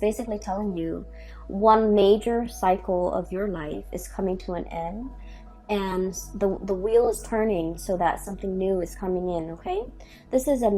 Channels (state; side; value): identical; both; correlation 1.00